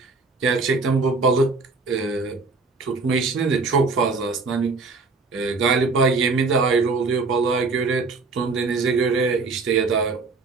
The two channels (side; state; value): left; quieter; 4.1 dB